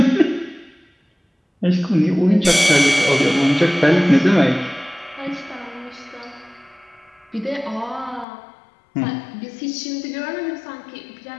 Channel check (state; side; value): drops out; right; at 8.2 s